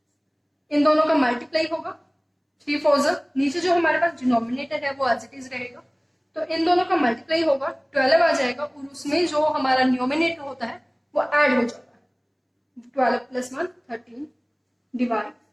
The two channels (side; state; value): both; identical; correlation 1.00